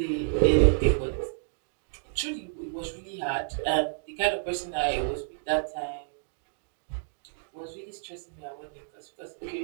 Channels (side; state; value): left; silent; digital silence